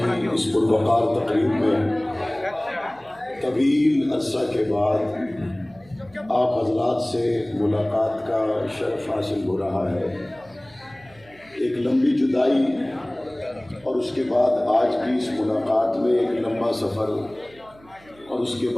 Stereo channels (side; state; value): right; noise; hum, 27 dB below the sound